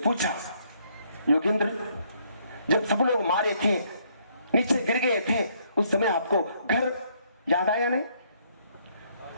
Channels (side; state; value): both; inverted; correlation -0.69